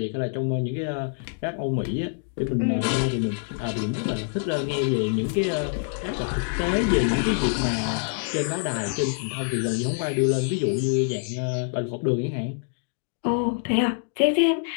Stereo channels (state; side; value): silent; right; digital silence